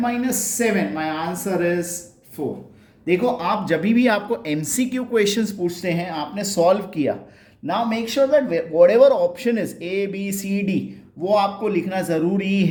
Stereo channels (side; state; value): both; identical; correlation 1.00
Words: - 7, माय आंसर इज 4। देखो आप जब भी आपको एमसीक्यू क्वेश्चंस पूछते हैं, आपने सॉल्व किया, now make sure that whatever option is A B C D, वो आपको लिखना जरूरी